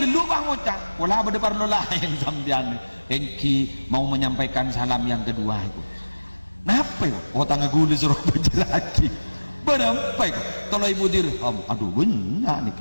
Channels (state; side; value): inverted; both; correlation -1.00